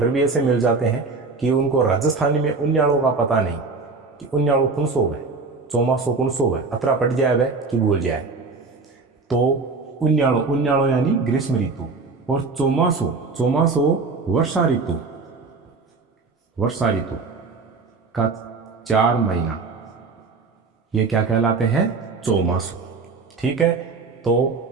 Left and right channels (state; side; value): quieter; left; 4.2 dB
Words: भी ऐसे मिल जाते हैं कि उनको राजस्थानी में उन्याड़ों का पता नहीं कि उन्याड़ो कौन सो है, चौमासो कौन सो है, अतरा पट जाए वह कि भूल जाए। तो उन्याड़ो, उन्याड़ो यानी ग्रीष्म ऋतु, और चौमासो, चौमासो वर्षा ऋतु, वर्षा ऋतु का 4 महीना, ये क्या कहलाते हैं, चौमासो। ठीक है, तो